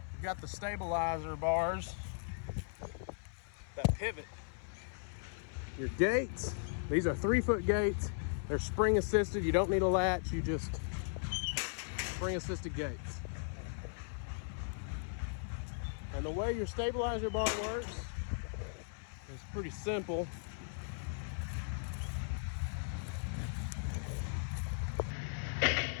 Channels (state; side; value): silent; right; 53 dB below the other